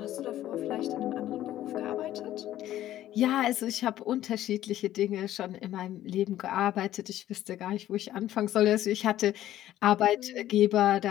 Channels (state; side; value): quieter; right; 13.2 dB